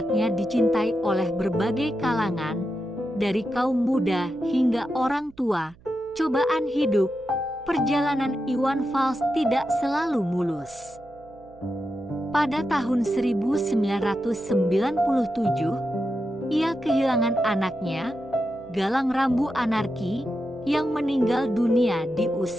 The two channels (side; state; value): right; noise; hum, 26 dB below the sound